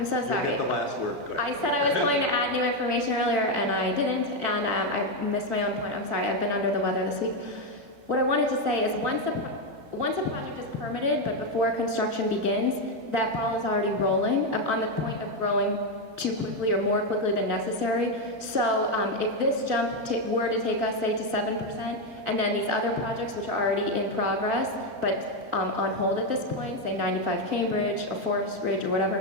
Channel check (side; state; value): left; late; 13 ms